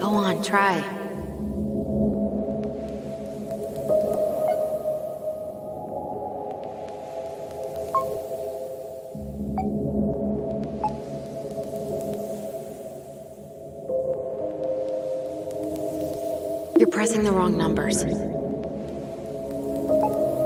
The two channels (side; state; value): both; identical; correlation 1.00